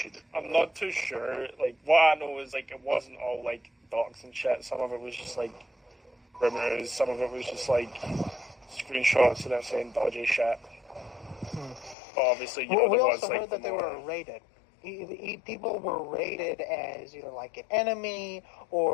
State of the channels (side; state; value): right; drops out; at 12.0 s